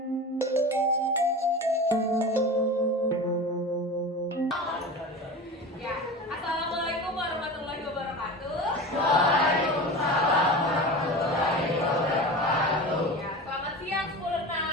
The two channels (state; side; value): normal; both; correlation 0.31